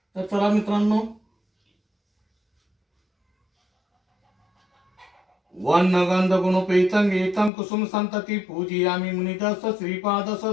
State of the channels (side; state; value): right; drops out; at 7.5 s